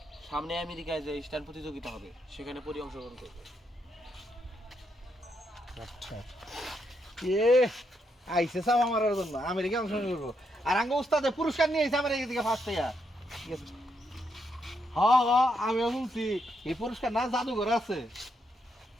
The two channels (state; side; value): normal; both; correlation 0.79